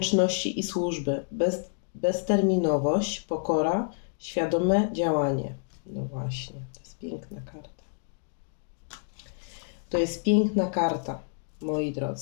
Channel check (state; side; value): silent; right; digital silence